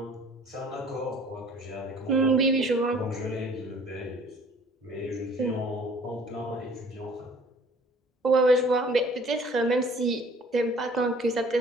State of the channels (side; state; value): both; normal; correlation 0.53